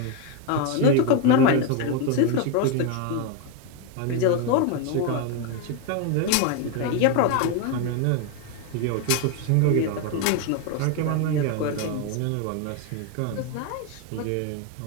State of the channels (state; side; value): different; both; correlation 0.02